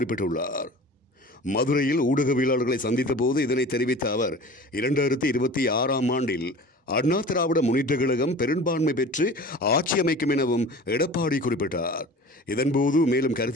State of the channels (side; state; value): both; normal; correlation 0.39